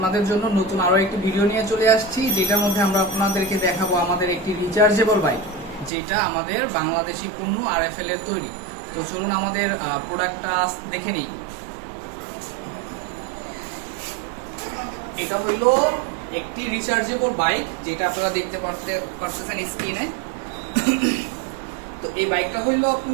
জন্য নতুন আরো একটি ভিডিও নিয়ে চলে আসছি, যেটার মধ্যে আমরা আপনাদেরকে দেখাবো আমাদের একটি রিচার্জেবল বাইক, যেটা আমাদের বাংলাদেশি পণ্য RFL এর তৈরি। তো চলুন আমাদের প্রোডাক্টটা দেখে নিই। এটা হইলো একটি রিচার্জেবল বাইক, যেটা আপনারা দেখতে পারতেছেন স্ক্রিনে। তো এই বাইকটা হইলো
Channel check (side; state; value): left; drops out; at 5.9 s